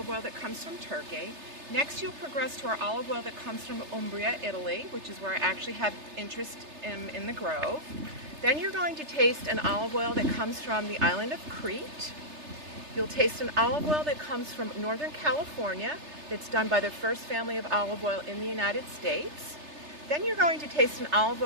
oil that comes from Turkey. Next, you'll progress to our olive oil that comes from Umbria, Italy, which is where I actually have interest in the Grove. Then you're going to taste an olive oil that comes from the island of Crete. You'll taste an olive oil that comes from Northern California, that's done by the first family of olive oil in the United States. Then you're going to taste an olive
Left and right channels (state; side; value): late; left; 3.3 ms